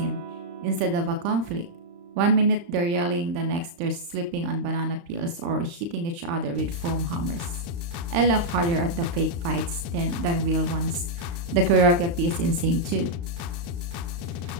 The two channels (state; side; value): late; left; 35 ms